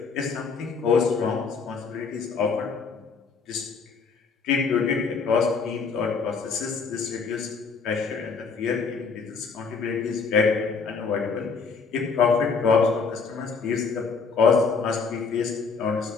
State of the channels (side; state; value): right; quieter; 5.1 dB